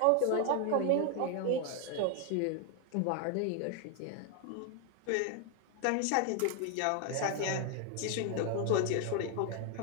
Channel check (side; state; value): both; different; correlation 0.00